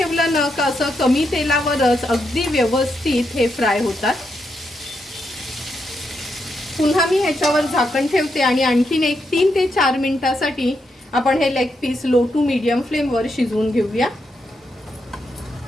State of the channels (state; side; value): normal; both; correlation 0.82